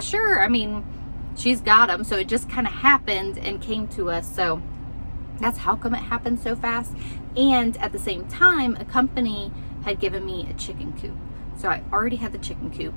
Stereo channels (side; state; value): both; inverted; correlation -1.00